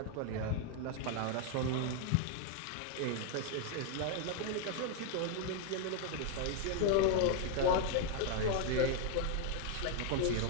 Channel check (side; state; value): both; different; correlation 0.00